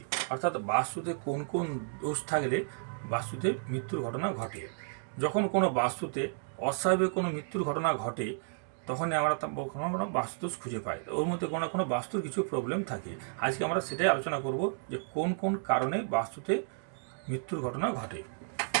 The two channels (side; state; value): left; silent; digital silence